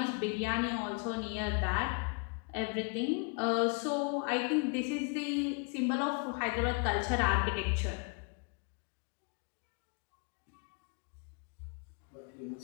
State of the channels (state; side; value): quieter; right; 35.2 dB